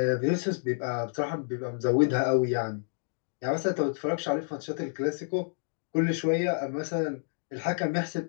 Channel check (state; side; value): silent; right; digital silence